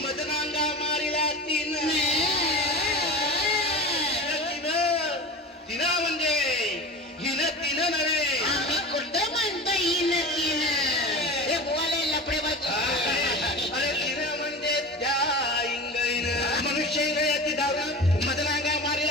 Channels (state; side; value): normal; both; correlation 0.31